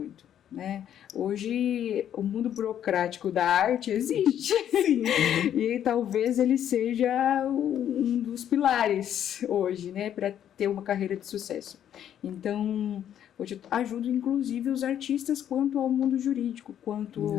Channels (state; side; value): quieter; right; 10.2 dB